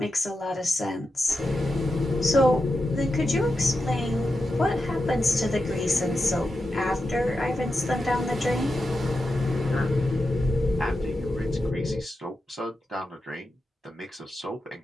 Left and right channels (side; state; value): both; normal; correlation 0.89